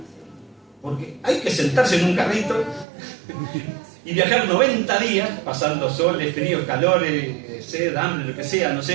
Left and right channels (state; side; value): drops out; left; at 2.9 s